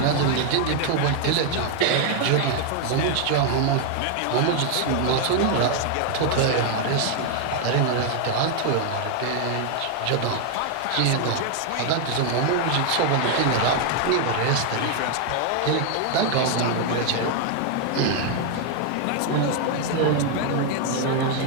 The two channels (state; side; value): different; both; correlation 0.00